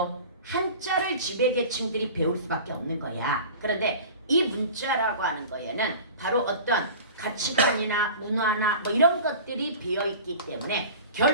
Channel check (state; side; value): inverted; both; correlation -0.39